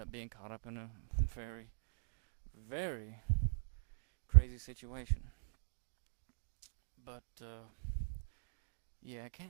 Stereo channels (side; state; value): left; silent; digital silence